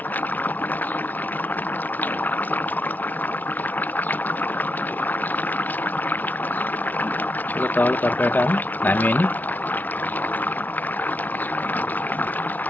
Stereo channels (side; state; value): right; late; 0.081 ms